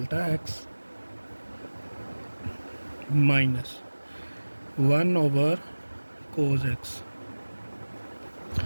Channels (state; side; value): inverted; both; correlation -1.00